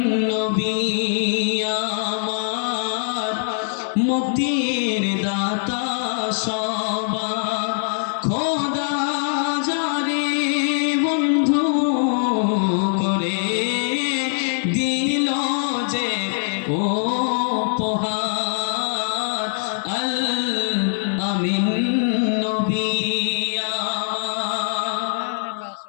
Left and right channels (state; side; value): silent; right; digital silence